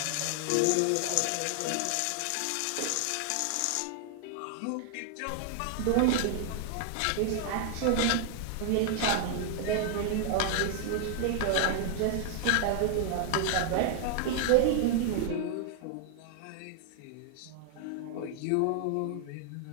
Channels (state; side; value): different; both; correlation 0.00